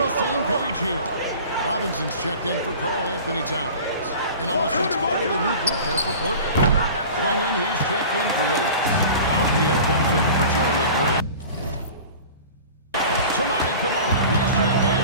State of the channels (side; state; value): both; inverted; correlation -0.39